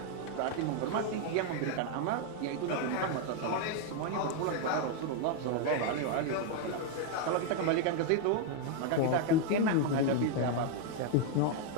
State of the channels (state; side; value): different; both; correlation 0.01